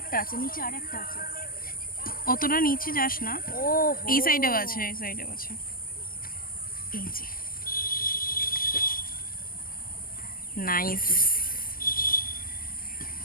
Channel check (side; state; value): right; late; 0.41 ms